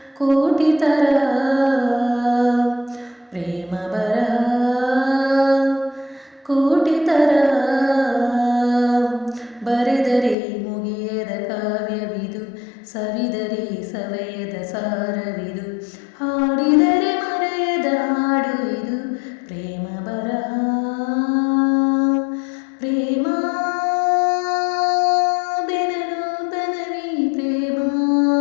ಕೋಟಿ ತರಹ ಪ್ರೇಮ ಬರಹ ಕೋಟಿ ತರಹ ಬರೆದರೆ ಮುಗಿಯದ ಕಾವ್ಯವಿದು, ಸವಿದರೆ ಸವೆಯದ ಸಾರವಿದು, ಹಾಡಿದರೆ ಮರೆಯದ ಹಾಡು ಇದು ಪ್ರೇಮ ಬರಹ. ಪ್ರೇಮ ಬೆನನೂತನವೀ ಪ್ರೇಮ,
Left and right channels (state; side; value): drops out; right; at 10.4 s